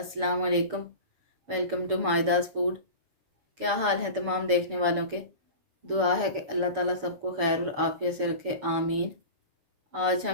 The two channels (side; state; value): left; late; 6.9 ms